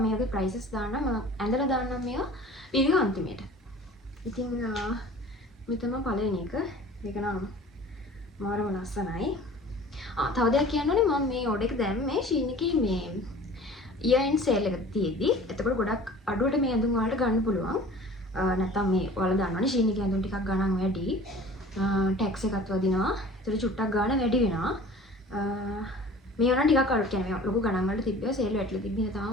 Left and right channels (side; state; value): both; normal; correlation 0.44